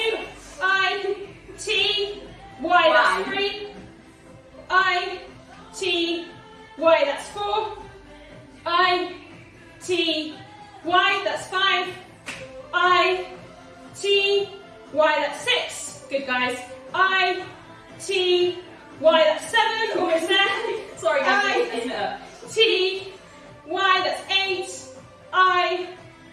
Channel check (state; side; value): identical; both; correlation 1.00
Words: I, T, Y, that's 3. I, T, Y, that's 4. I, T, Y, that's 5. I, T, Y, that's 6. Good guys. I, T, Y, that's 7. Almost there. Sorry guys, I, isn't it up? T, Y, that's 8. I,